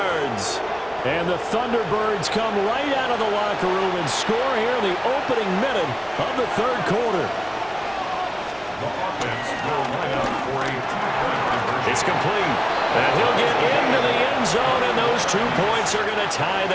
And the Thunderbirds come right out of the locker room and score here in the opening minute of the third quarter. The offense will line up for a two-point conversion. It's complete. And he'll get into the end zone, and those 2 points are going to tie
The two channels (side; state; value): both; identical; correlation 1.00